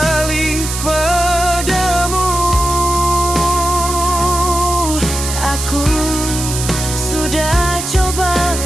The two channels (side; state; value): right; noise; hiss, 5 dB below the sound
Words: padamu. Aku sudah coba